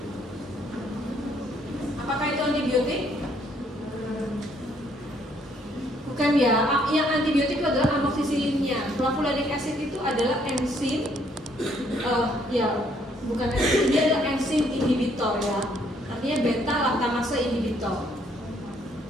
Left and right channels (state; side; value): normal; both; correlation 0.67